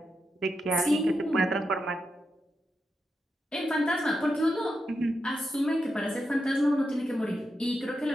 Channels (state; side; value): normal; both; correlation 0.86